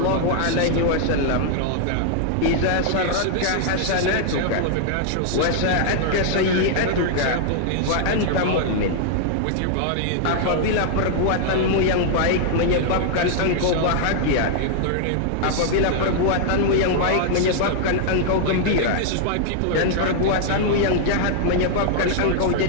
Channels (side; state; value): both; different; correlation -0.01